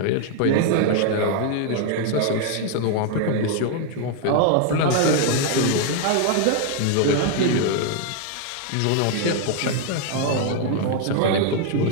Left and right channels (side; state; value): both; different; correlation 0.00